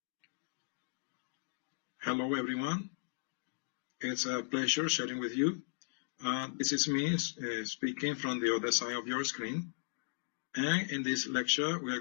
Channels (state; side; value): silent; right; digital silence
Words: Hello, everyone. It's a pleasure sharing with you. This is me speaking from the other side of your screen. And in this lecture, we are